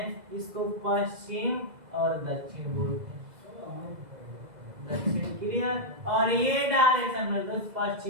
इसको पश्चिम और दक्षिण बोलते हैं, दक्षिण। क्लियर, और ये डायरेक्शन मेरे दोस्त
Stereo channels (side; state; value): left; late; 2.0 ms